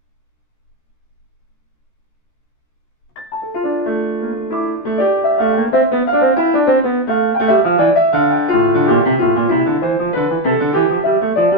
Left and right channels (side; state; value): right; late; 14 ms